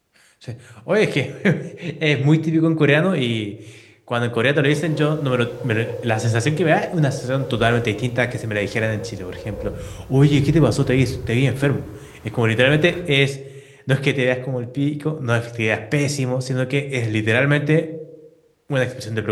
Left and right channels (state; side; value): identical; both; correlation 1.00